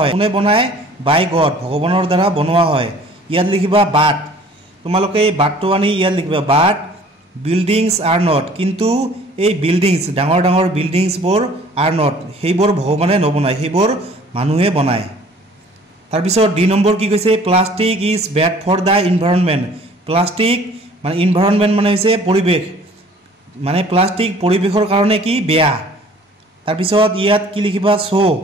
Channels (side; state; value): both; normal; correlation 0.52